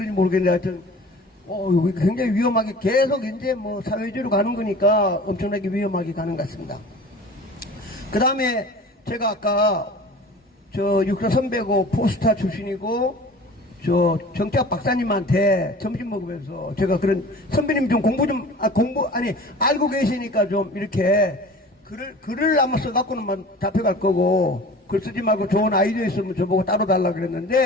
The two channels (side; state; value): both; normal; correlation 0.41